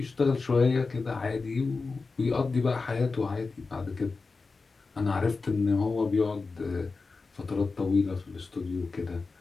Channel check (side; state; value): right; quieter; 4.1 dB